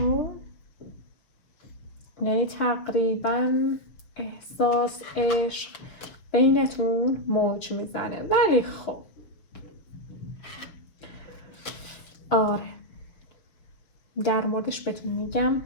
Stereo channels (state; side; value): late; right; 6.5 ms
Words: یعنی تقریبا احساس عشق بینتون موج میزنه، ولی خب آره در موردش بهتون میگم.